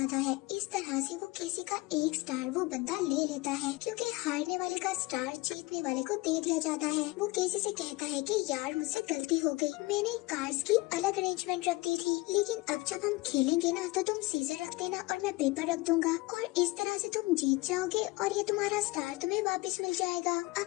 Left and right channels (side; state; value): right; quieter; 22.4 dB